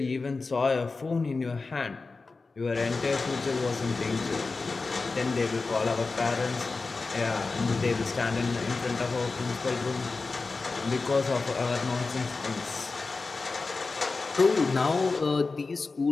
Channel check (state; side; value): quieter; right; 4.0 dB